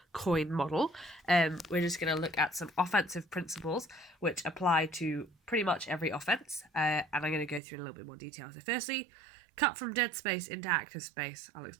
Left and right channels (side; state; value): left; drops out; at 7.6 s